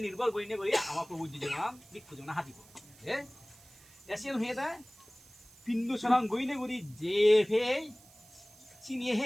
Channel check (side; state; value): right; noise; hiss, 24 dB below the sound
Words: নির্ভর করি করি আমার প্রভু জীবন বিক্ষু জীবন হাতিব এসিয়ান হয়ে দেয় পিন্দু সরং গইনে গুড়ি যে ফে চিনিয়ে